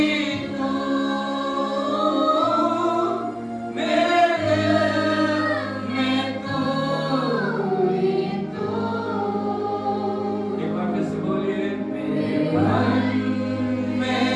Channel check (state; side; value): identical; both; correlation 1.00